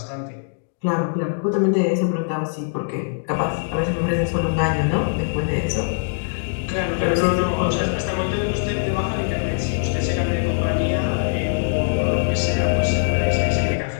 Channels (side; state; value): right; silent; digital silence